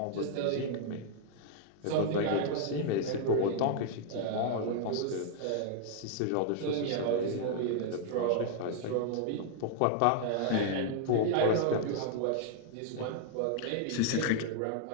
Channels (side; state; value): both; different; correlation -0.01